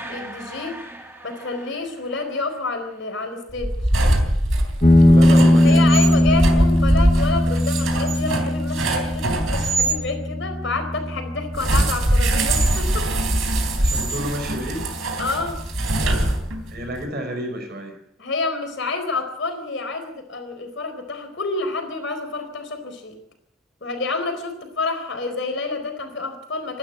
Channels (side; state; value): both; normal; correlation 0.75